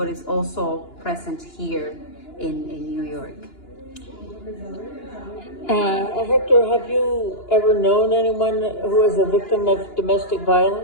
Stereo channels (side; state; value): right; late; 2.9 ms